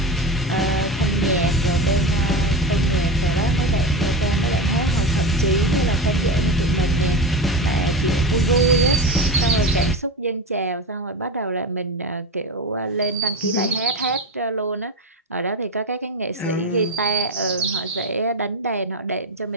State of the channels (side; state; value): both; normal; correlation 0.22